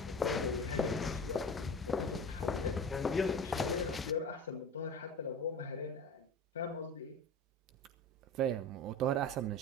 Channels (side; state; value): both; normal; correlation 0.34